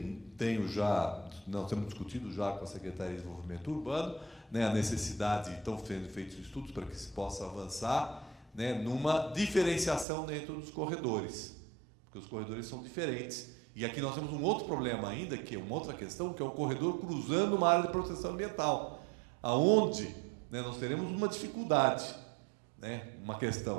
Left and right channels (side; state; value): left; drops out; at 10.1 s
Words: nós temos discutido já com a Secretaria de Desenvolvimento Urbano, né, a necessidade, estão sendo feitos estudos para que se possa avançar, né, numa diferenciação dentro dos corredores, porque os corredores são diferentes. E aqui nós temos um outro problema ainda, que é uma outra questão, que é o corredor cruzando uma área de proteção ambiental, aonde, né, nós teremos uma dificuldade, né, uma